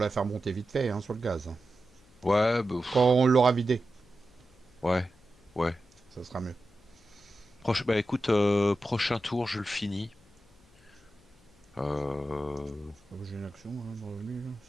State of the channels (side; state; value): left; noise; hum, 29 dB below the sound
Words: faire monter vite fait, hein, sur le gaz, hein. Ouais, bah, Quand on l'aura vidé, ouais, ouais. ça sera mieux. Bah écoute, prochain tour, je le finis. Ah, j'ai une action, hein, de revenu, là.